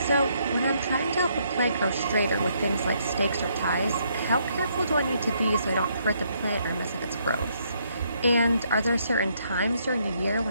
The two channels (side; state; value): both; inverted; correlation -0.72